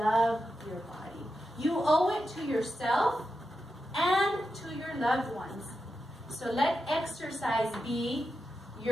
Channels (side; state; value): both; normal; correlation 0.88